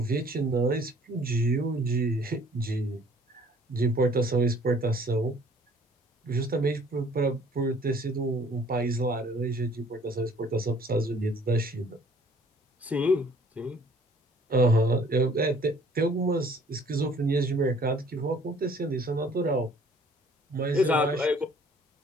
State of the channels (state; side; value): normal; both; correlation 0.56